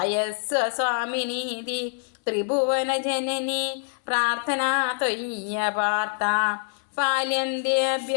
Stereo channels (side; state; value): right; silent; 61 dB below the other